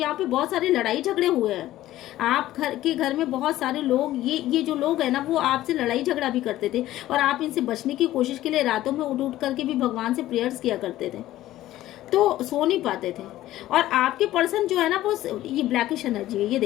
पे बहुत सारे लड़ाई झगड़े हुए हैं। आप घर में बहुत सारे लोग, ये जो लोग है ना, वो आपसे लड़ाई झगड़ा भी करते थे, और आप इनसे बचने की कोशिश के लिए रातों में उठ करके भी भगवान से प्रेयर्स किया करते थे, तो सो नहीं पाते थे। और आपके पर्सन जो है ना, वो ये ब्लैकिश एनर्जी है, ये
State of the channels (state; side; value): quieter; right; 14.7 dB